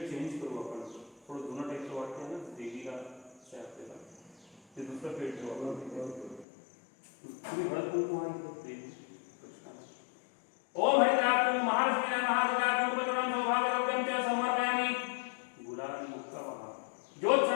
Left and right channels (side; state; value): right; drops out; at 6.5 s